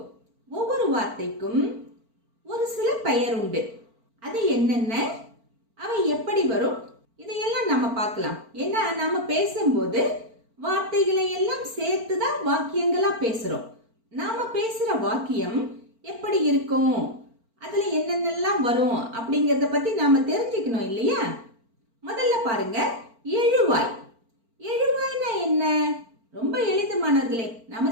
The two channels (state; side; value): late; left; 4.4 ms